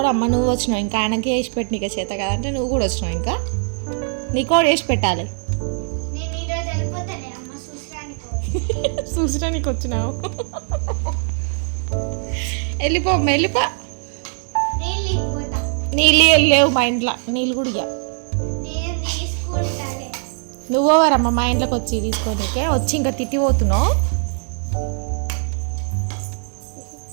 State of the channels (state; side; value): silent; left; 65 dB below the other